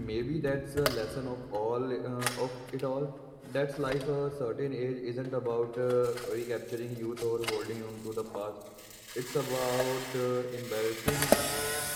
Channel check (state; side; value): identical; both; correlation 1.00